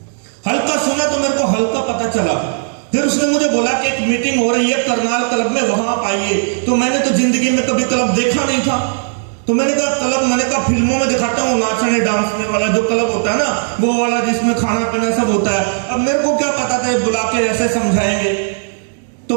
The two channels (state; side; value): silent; left; digital silence